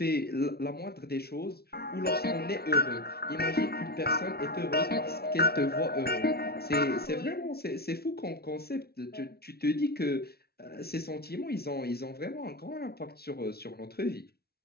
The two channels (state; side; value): late; right; 0.45 ms